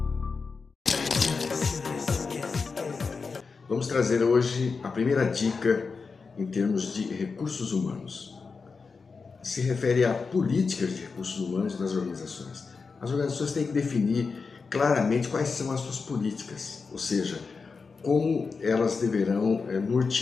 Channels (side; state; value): right; quieter; 4.8 dB